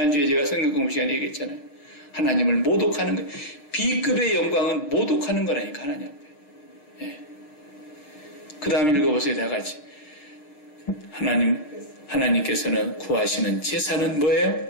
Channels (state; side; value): late; right; 6.6 ms